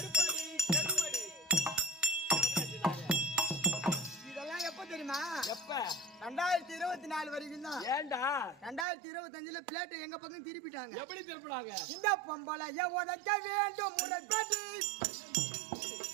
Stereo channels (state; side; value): drops out; left; at 8.8 s